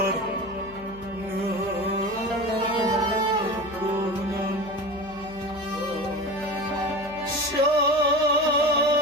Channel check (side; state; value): left; noise; hum, 20 dB below the sound